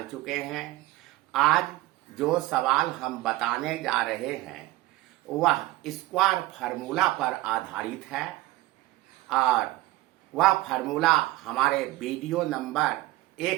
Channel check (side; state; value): left; quieter; 17.7 dB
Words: चुके हैं। आज जो सवाल हम बताने जा रहे हैं वह स्क्वायर फार्मूला पर आधारित है और वह फार्मूला हमारे वीडियो नंबर